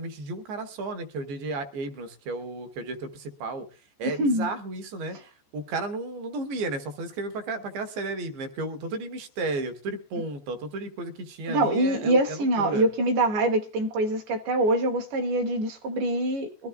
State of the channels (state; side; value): late; left; 14 ms